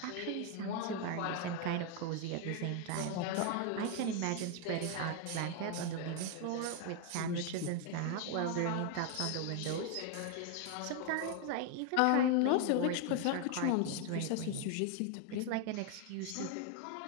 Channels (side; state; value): both; different; correlation 0.01